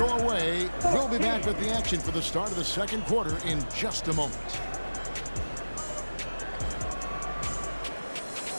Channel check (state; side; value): inverted; both; correlation -1.00